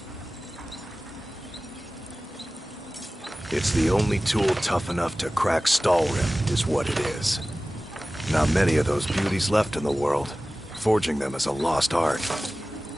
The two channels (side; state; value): both; normal; correlation 0.97